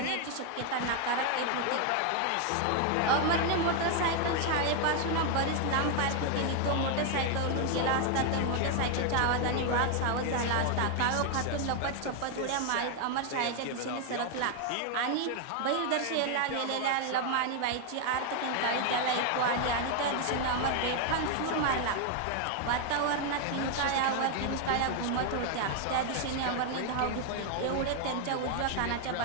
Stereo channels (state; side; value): different; both; correlation 0.00